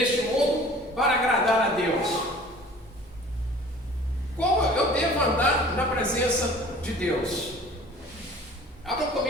mundo para agradar a Deus? Como eu devo andar na presença de Deus? Abram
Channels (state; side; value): normal; both; correlation 0.47